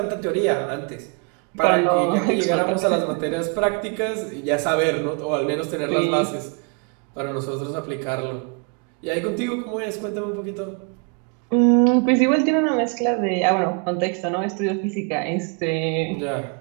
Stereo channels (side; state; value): left; quieter; 34.1 dB